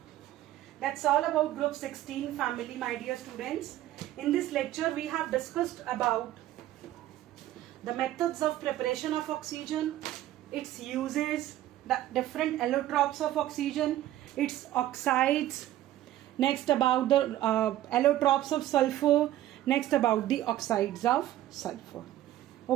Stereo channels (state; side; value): quieter; left; 13.8 dB